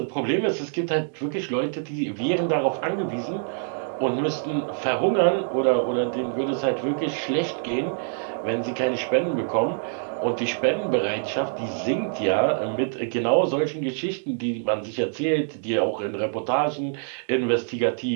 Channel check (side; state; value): left; silent; digital silence